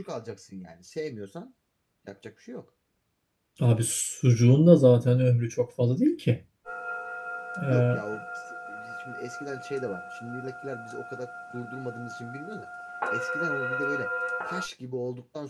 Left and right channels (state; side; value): identical; both; correlation 1.00